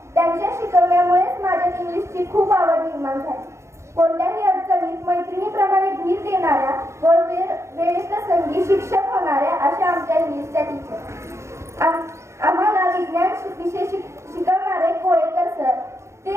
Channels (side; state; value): left; late; 0.14 ms